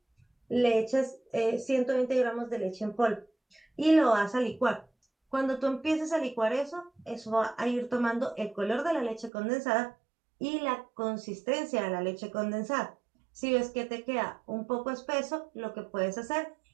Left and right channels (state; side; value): drops out; left; at 9.3 s